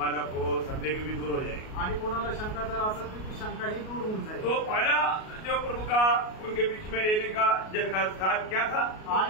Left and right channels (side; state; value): right; late; 38 ms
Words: को संदेह भी दूर हो जाएगा। आणि कोणाला शंका जर असेल तर ती शंकाही दूर होऊन जाईल। तो पहला जो प्रभु का उनके बीच में रहने का जगह स्थान क्या था?